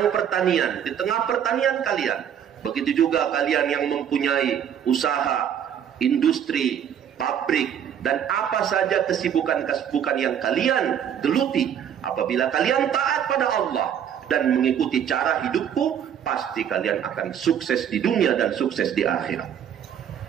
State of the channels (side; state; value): left; quieter; 9.0 dB